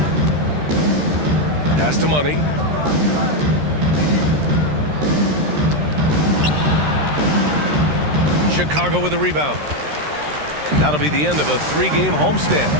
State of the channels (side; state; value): left; late; 13 ms